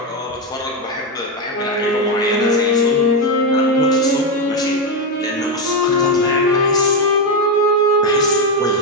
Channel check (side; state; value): both; normal; correlation 0.08